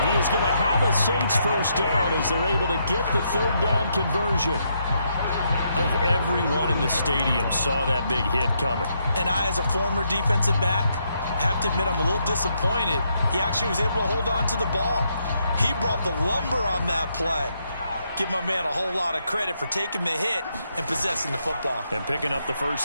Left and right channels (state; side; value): inverted; both; correlation -0.77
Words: he is going to have a Saints first down as they're able to get the 3rd down conversion. I think everyone in the stadium saw that big hit coming. And I, as a former defensive back, have to admit I'm a little disappointed. He actually was able to hold on to the ball. He brought the lumber on that play. Give my man a whole lot of credit for taking the hit and possessing the football. And picking up the